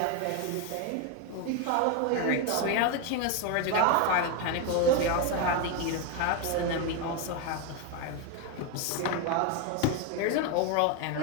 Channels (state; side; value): different; both; correlation 0.02